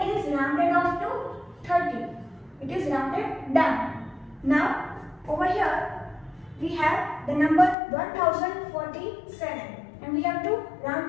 is rounded off to 30. It is rounded down. Now over here we have the number 1047 and we have to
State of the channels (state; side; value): drops out; right; at 7.8 s